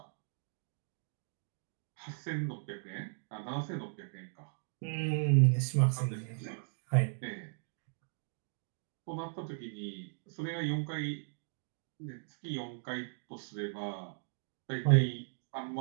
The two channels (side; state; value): left; silent; digital silence